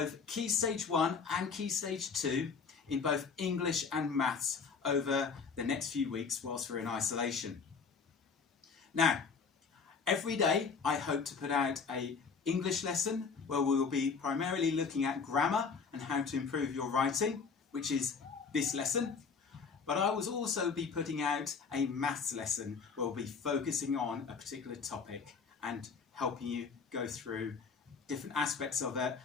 Key Stage 1 and Key Stage 2 in both English and maths over the next few weeks whilst we're in isolation. Now, every day I hope to put out an English lesson where we will be primarily looking at grammar and how to improve your writing, which is this lesson. But I will also be putting out a maths lesson where we'll be focusing on a particular topic and helping you go through different aspects of it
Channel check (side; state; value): right; quieter; 5.5 dB